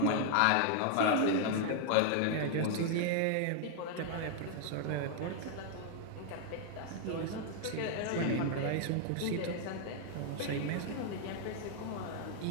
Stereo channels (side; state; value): both; different; correlation 0.00